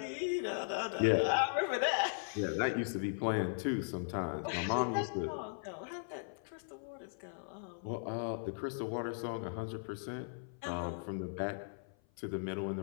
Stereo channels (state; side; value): silent; right; 53 dB below the other